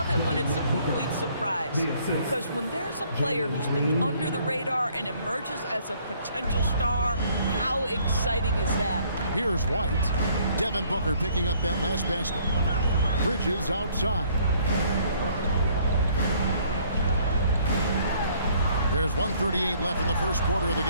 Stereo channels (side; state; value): both; inverted; correlation -0.62